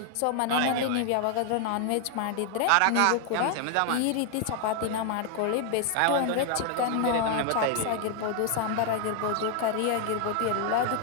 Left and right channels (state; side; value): different; both; correlation 0.00